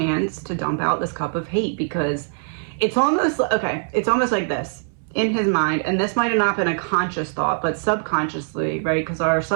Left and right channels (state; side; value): silent; left; 64 dB below the other